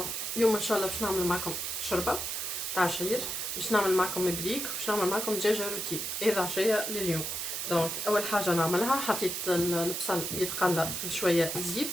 اليوم ان شاء الله باش نعمل معكم شوربه تاع عشير، باش نعمل معكم مبريك، باش نعمل معكم دجاجه روتي. هذا عشيه لليوم. دونك اول حاجه نعملها، حطيت البصل يتقلى في شويه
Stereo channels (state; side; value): noise; right; hiss, 3 dB below the sound